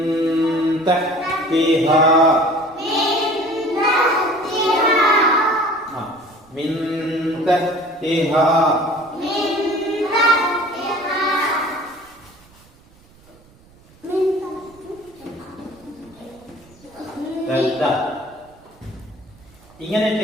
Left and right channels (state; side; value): noise; right; rumble, 28 dB below the sound